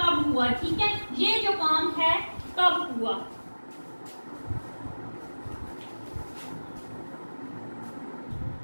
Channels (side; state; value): both; inverted; correlation -1.00